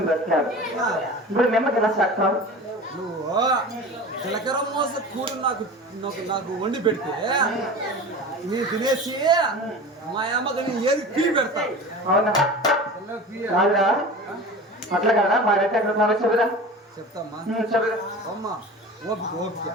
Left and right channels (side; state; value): both; normal; correlation 0.34